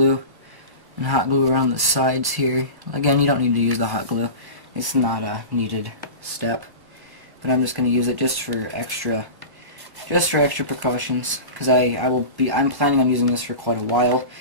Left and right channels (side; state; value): left; late; 1.1 ms